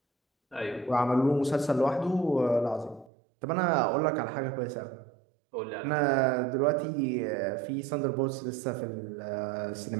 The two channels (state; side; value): drops out; left; at 3.1 s